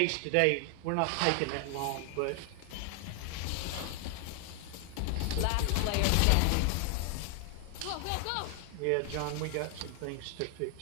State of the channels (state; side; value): different; both; correlation 0.00